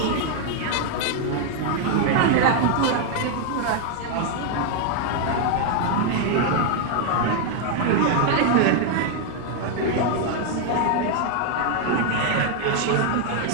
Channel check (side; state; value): both; different; correlation 0.00